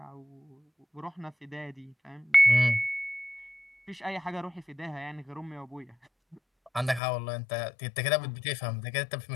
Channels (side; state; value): right; drops out; at 7.0 s